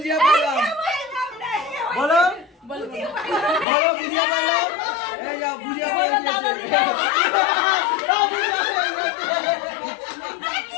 পাইলাম, বলো বলো বুঝিয়া পাইলাম। এই যাও বুঝিয়া পাইলাম,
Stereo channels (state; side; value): drops out; right; at 3.7 s